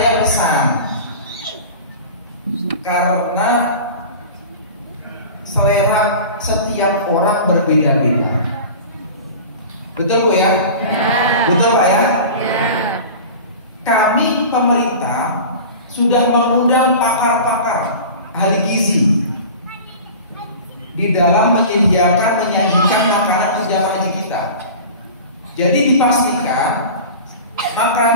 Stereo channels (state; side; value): inverted; both; correlation -0.36